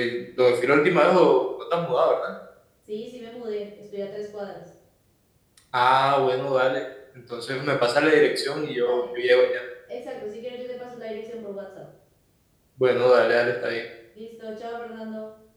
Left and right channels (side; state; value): both; identical; correlation 1.00